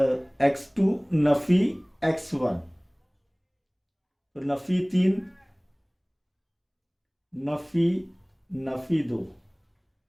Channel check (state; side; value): identical; both; correlation 1.00